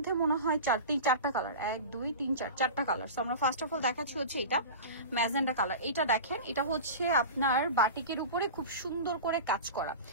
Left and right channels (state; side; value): inverted; both; correlation -0.30